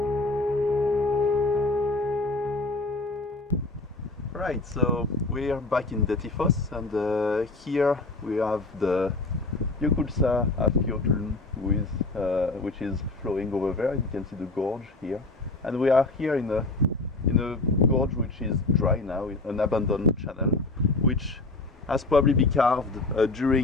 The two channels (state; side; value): quieter; right; 3.2 dB